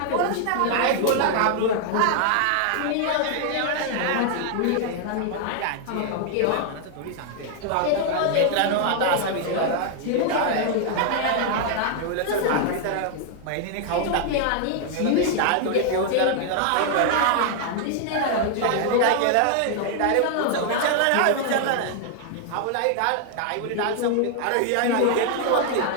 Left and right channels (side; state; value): both; different; correlation 0.00